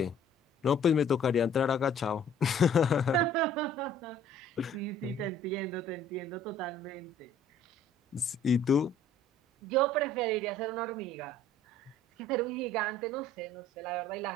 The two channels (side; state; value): both; normal; correlation 0.54